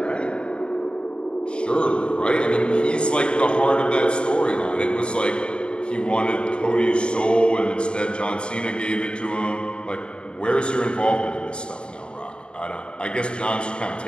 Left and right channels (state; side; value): late; right; 0.053 ms